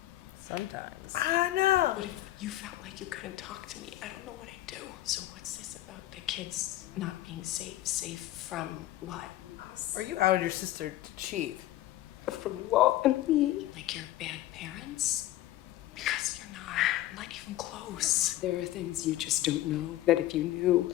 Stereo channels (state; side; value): quieter; right; 14.8 dB